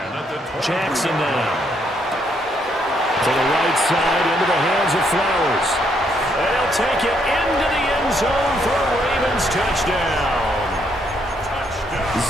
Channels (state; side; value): normal; both; correlation 0.73